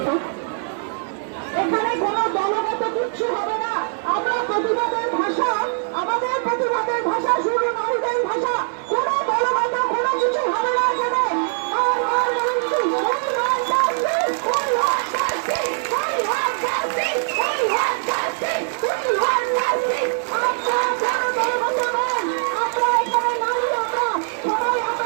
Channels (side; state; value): left; silent; digital silence